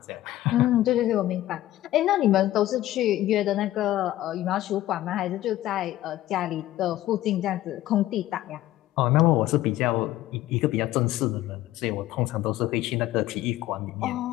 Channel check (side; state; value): right; quieter; 14.8 dB